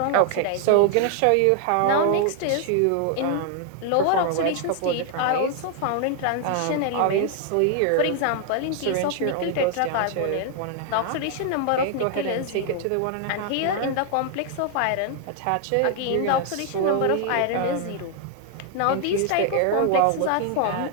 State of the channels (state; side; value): different; both; correlation 0.00